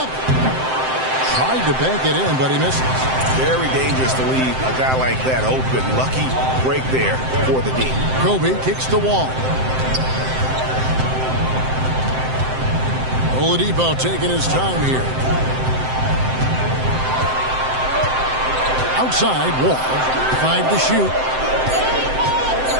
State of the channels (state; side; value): late; left; 7.7 ms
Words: Tried to bank it in, but he misses. Very dangerous to leave a guy like that open. Lucky break there for the D. Kobe kicks the wall. Oladipo taking his time here. Outside, Wall. 5 to shoot.